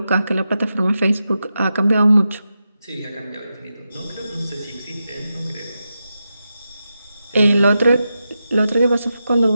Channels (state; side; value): inverted; both; correlation -0.89